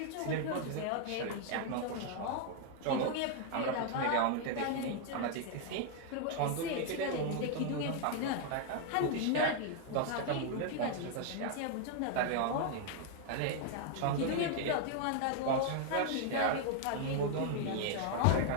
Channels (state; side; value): different; both; correlation 0.00